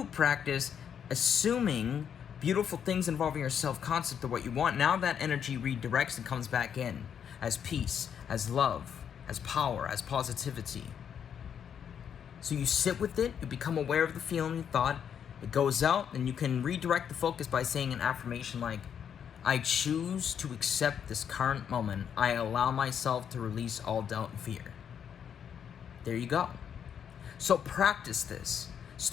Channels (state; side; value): quieter; right; 8.2 dB